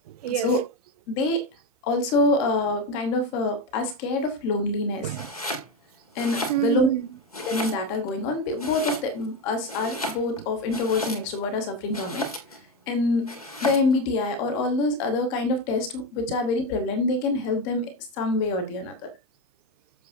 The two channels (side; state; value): both; normal; correlation 0.14